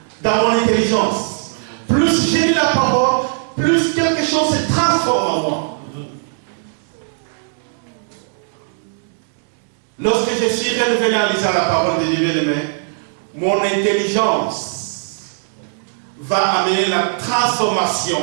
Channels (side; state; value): left; silent; digital silence